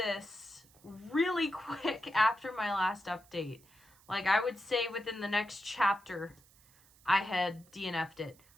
really quick after my last update. Like, I would say within the next chapter, I had DNF'd it.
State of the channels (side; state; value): right; noise; hiss, 28 dB below the sound